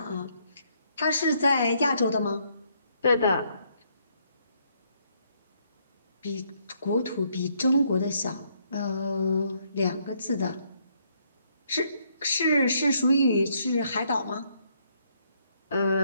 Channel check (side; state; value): both; inverted; correlation -0.71